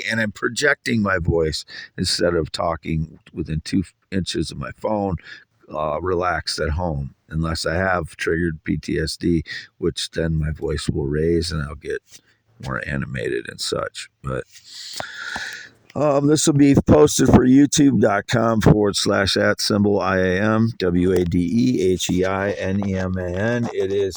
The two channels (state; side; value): identical; both; correlation 1.00